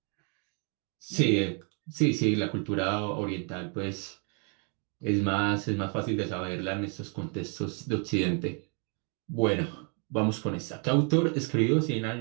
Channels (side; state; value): left; quieter; 38.3 dB